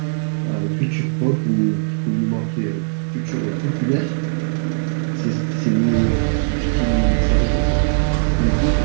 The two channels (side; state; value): left; silent; digital silence